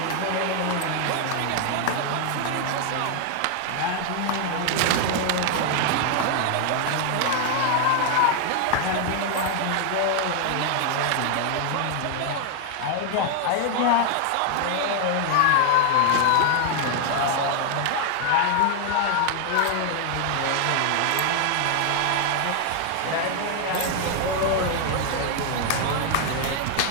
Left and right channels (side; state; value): both; different; correlation 0.00